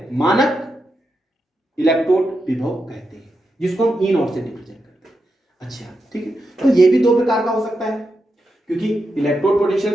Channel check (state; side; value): normal; both; correlation 0.86